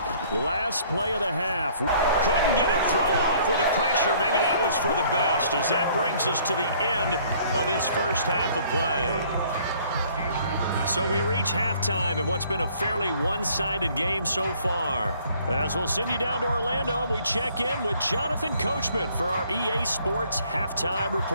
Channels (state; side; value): inverted; both; correlation -0.59